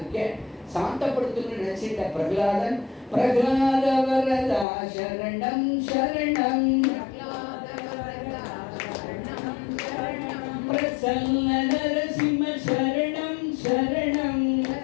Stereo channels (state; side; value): drops out; right; at 4.7 s